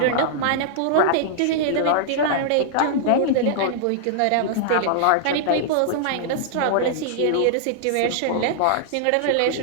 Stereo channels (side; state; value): both; different; correlation -0.01